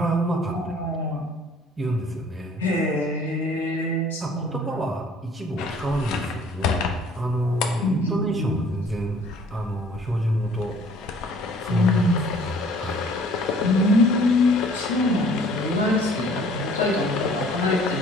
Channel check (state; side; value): normal; both; correlation 0.55